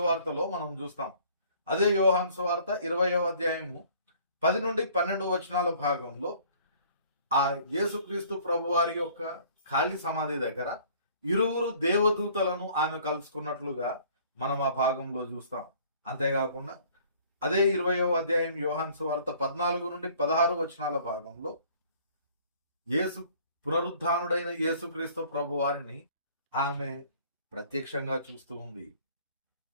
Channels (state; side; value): inverted; both; correlation -0.55